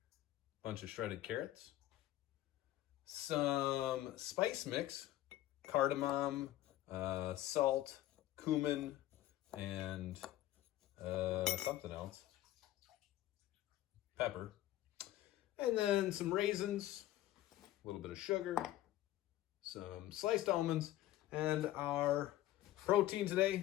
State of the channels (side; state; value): right; quieter; 14.7 dB